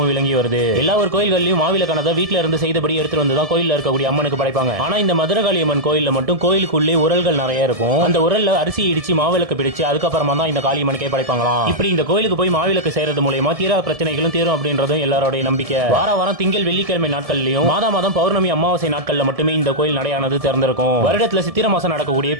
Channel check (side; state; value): left; late; 1.7 ms